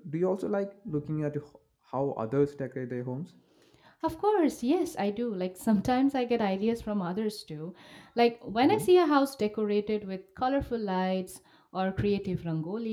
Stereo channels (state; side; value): identical; both; correlation 1.00